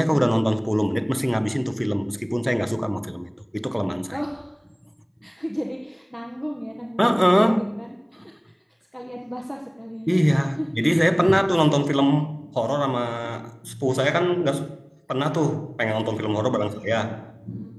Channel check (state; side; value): identical; both; correlation 1.00